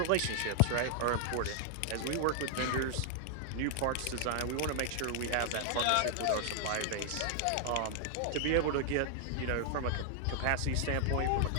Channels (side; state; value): both; different; correlation -0.01